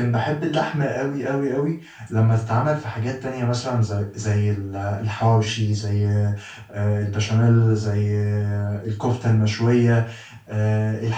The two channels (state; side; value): identical; both; correlation 1.00